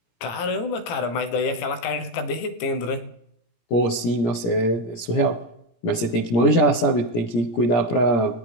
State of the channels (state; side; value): late; right; 17 ms